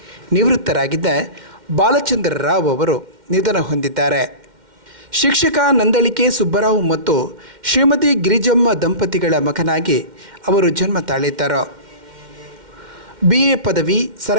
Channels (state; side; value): late; left; 2.1 ms